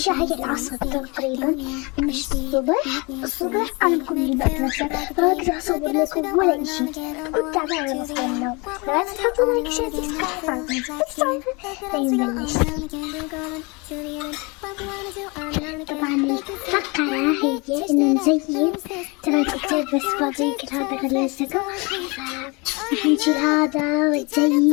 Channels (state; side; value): quieter; right; 28.3 dB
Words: هاي العصر تقريبا، مش الصبح أنا بكون بالمدرسة، فأقدر أصور لكم ولا إشي. كنت تعبانة بصحى من النوم، لا تحطوا لايك شير سبسكرايب. بنبلش. طبعا الفقرة هي إنه نزين، ترى كتير بس فاضي كل هذا غلستكم، راح نشيل هذا